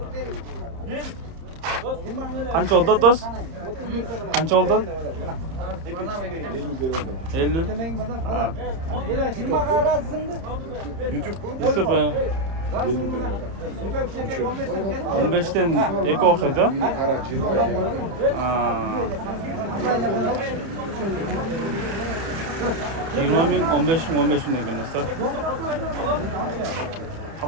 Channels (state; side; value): late; left; 30 ms